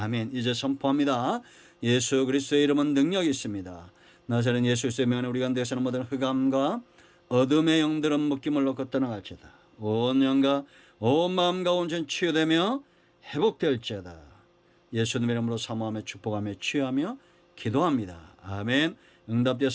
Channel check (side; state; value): both; identical; correlation 1.00